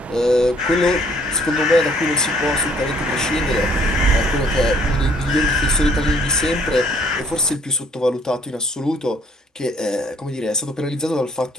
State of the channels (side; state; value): both; normal; correlation 0.63